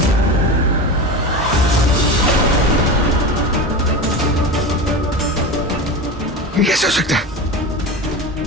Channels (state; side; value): normal; both; correlation 0.26